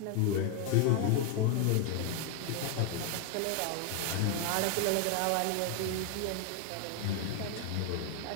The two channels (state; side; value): different; both; correlation 0.00